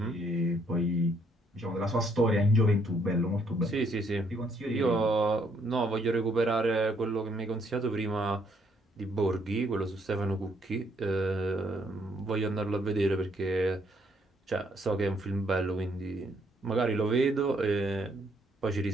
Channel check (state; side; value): normal; both; correlation 0.69